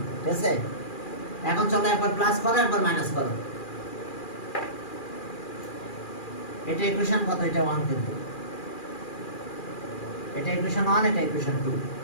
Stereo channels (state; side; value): late; right; 2.4 ms